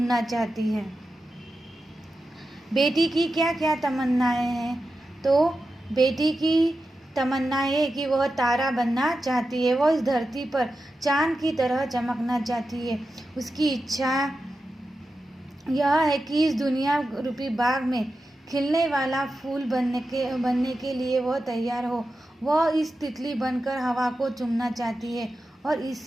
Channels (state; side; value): normal; both; correlation 0.91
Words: चाहती है। बेटी की क्या क्या तमन्नाएं हैं? तो बेटी की तमन्ना है कि वह तारा बनना चाहती है। वह इस धरती पर चांद की तरह चमकना चाहती है। उसकी इच्छा यह है कि इस दुनिया रूपी बाग में खिलने वाला फूल बनने के लिए वह तैयार हो। वह इस तितली बनकर हवा को चूमना चाहती है। और